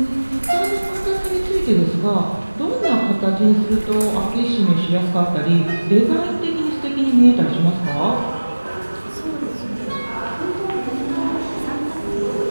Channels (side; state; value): both; inverted; correlation -1.00